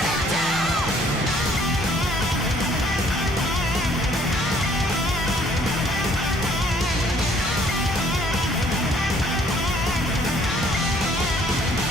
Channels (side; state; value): both; normal; correlation 0.61